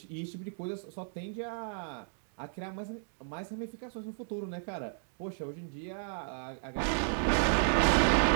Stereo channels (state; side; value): silent; left; digital silence